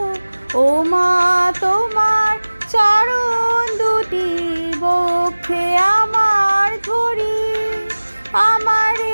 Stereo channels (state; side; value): inverted; both; correlation -1.00